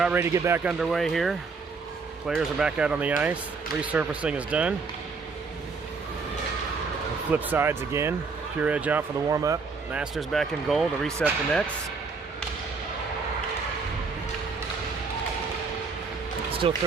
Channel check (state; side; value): quieter; left; 4.6 dB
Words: ready to get back underway here. Players are back out on the ice. Resurfacing is done. Flip sides again. Pure Edge out for the warm-up. Masters back in goal to reset the nets. Still